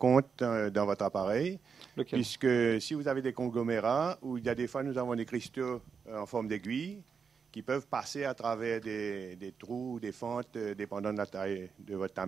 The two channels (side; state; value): left; quieter; 6.0 dB